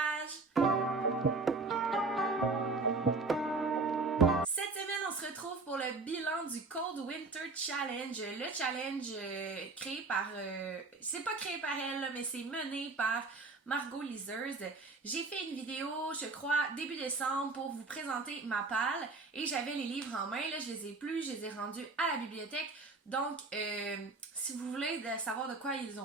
Cette semaine, on se retrouve pour le bilan du Cold Winter Challenge. Le challenge créé par... c'est pas créé par elle, là, mais c'est mené par Margot Liseuse. J'ai fait une vidéo, je crois, début décembre pour vous présenter ma palle et j'avais les livres en main. Là, je les ai plus, je les ai rendus à la bibliothèque. Donc, si vous voulez savoir de quoi ils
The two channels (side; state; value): left; quieter; 3.7 dB